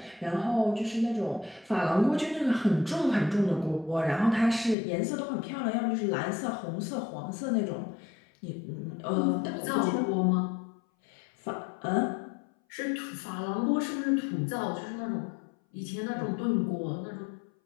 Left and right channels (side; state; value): right; drops out; at 4.8 s